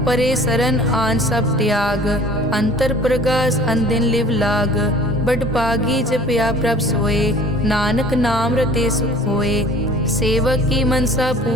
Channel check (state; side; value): normal; both; correlation 0.48